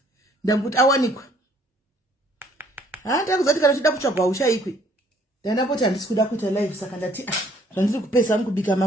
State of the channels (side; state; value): both; normal; correlation 0.62